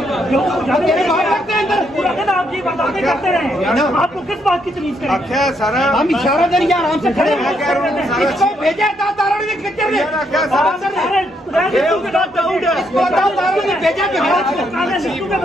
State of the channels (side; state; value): both; normal; correlation 0.75